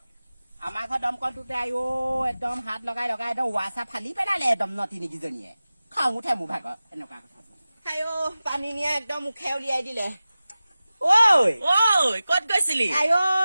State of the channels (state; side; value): inverted; both; correlation -0.96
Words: আমাৰ ঘৰ দমকলটোতে একদম হাত লগাই একদম ৱাছাৰ ফালি পেলালে একদম নতিনীকেইজনীয়ে খাওঁ উঠে মোৰ ভাগৰ এনেকুৱা কথা পানী নিয়ে একদম মুখে উলিয়াই দিলে ক'ত গৈছিলি